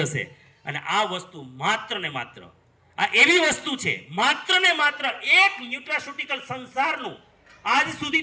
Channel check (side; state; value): both; identical; correlation 1.00